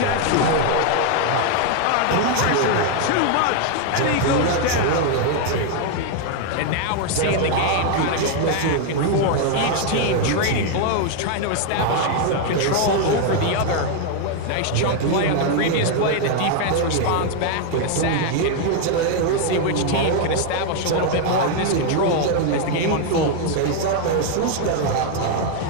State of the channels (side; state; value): both; different; correlation 0.01